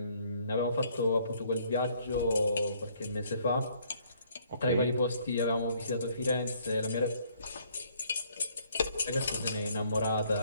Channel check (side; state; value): both; inverted; correlation -0.64